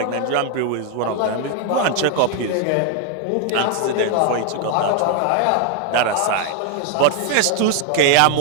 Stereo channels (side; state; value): both; different; correlation 0.00